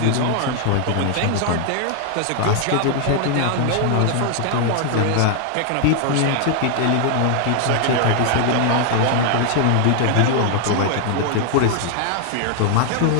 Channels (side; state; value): both; different; correlation 0.00